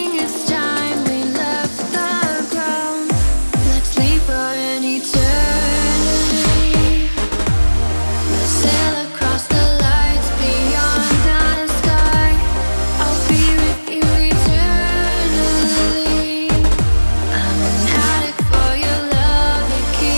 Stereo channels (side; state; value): both; inverted; correlation -1.00